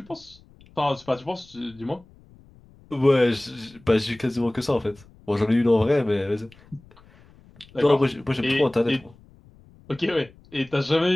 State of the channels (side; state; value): left; noise; rumble, 26 dB below the sound